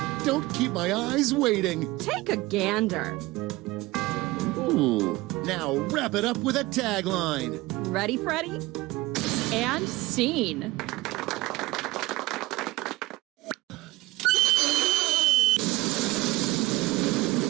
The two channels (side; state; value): left; quieter; 20.0 dB